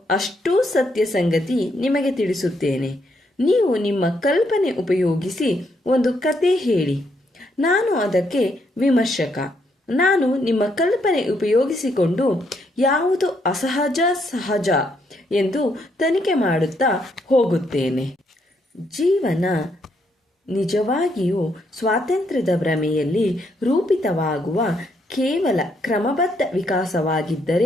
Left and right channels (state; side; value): normal; both; correlation 0.75